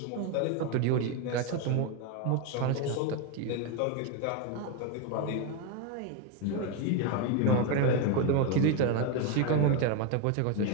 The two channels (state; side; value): different; both; correlation 0.02